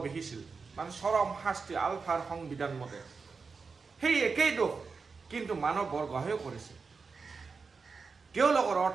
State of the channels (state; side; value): quieter; left; 4.8 dB